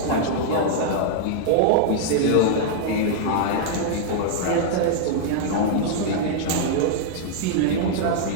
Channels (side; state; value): both; different; correlation -0.01